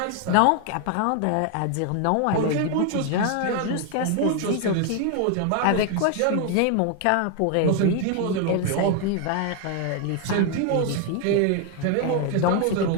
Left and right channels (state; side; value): different; both; correlation 0.01